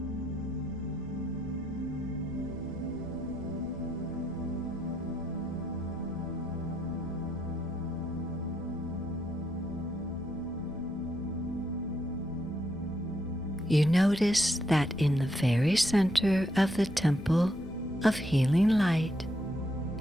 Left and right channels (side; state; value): left; noise; rumble, 17 dB below the sound